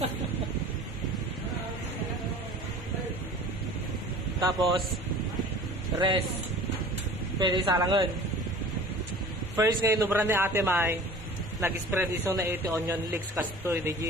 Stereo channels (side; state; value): both; normal; correlation 0.43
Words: Tapos, rest. Pwede salangan. First ngayon, nubran ni Ate May, nag-spread iso na ito onion leeks kastoy.